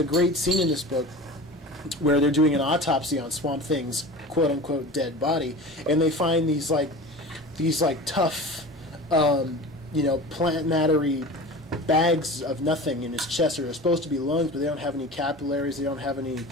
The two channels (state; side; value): normal; both; correlation 0.35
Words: great scene in this book where they're doing an autopsy on Swamp Thing's quote-unquote dead body, and they find these tough plant mattery bags of nothing in his chest. They're supposed to be lungs, but they don't have any capillaries. They don't have any,